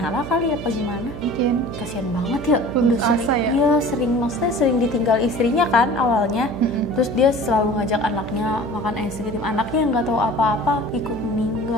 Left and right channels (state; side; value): noise; right; hum, 9 dB below the sound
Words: kali apa gimana? Mungkin. Kasian banget ya, Putus udah sering, asa ya? iya maksudnya sering ditinggal istrinya kan awalnya. Terus dia selalu ngajak anaknya makan es krim, anaknya yang nggak tahu apa-apa ikut